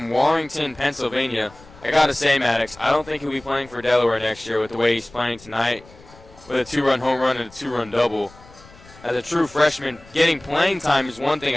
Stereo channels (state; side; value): noise; left; rumble, 23 dB below the sound